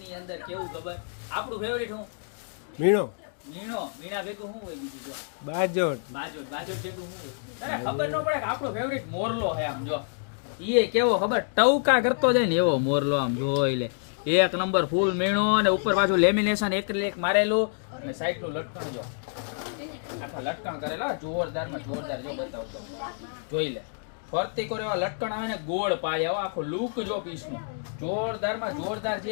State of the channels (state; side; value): silent; right; digital silence